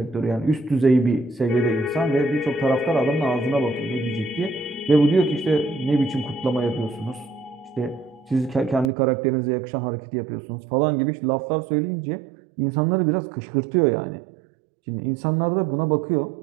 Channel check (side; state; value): left; drops out; at 8.9 s